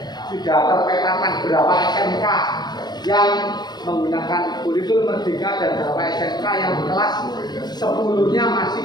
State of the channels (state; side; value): late; right; 0.20 ms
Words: sudah terpetakan berapa SMK yang menggunakan kurikulum Merdeka dan berapa SMK yang kelas 10-nya masih